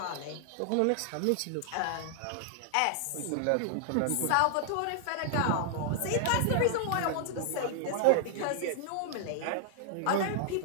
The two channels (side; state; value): both; different; correlation -0.01